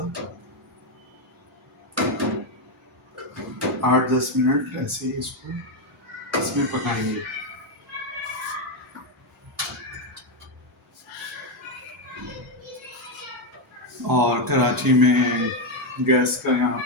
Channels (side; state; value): both; normal; correlation 0.05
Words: 8 10 मिनट ऐसे ही इसको इसमें पकाएंगे। और कराची में गैस का यहाँ